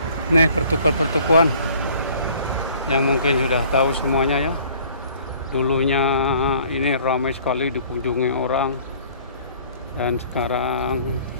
Nih pertukuan yang mungkin sudah tahu semuanya ya. Dulunya ini ramai sekali dikunjungi orang, dan sekarang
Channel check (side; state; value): both; inverted; correlation -0.54